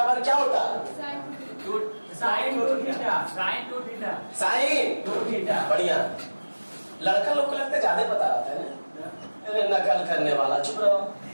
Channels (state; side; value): inverted; both; correlation -1.00